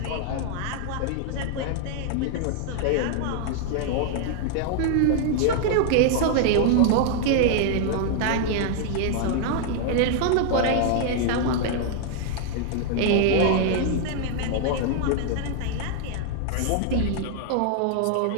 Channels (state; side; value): different; both; correlation 0.00